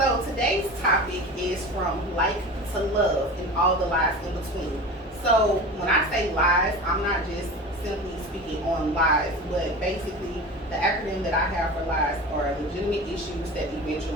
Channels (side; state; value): both; normal; correlation 0.33